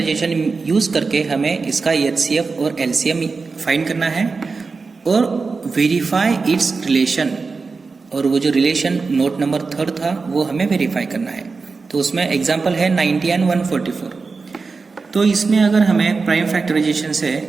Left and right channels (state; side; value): quieter; left; 4.4 dB